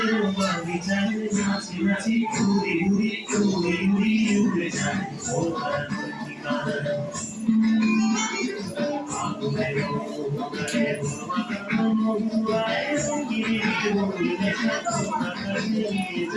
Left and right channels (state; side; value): identical; both; correlation 1.00